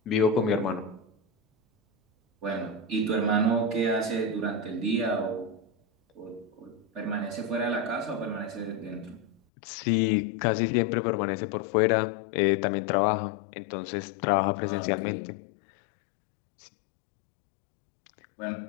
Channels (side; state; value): right; drops out; at 9.4 s